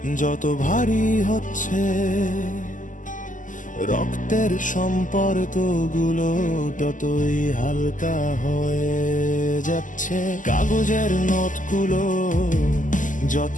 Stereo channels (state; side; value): late; right; 0.37 ms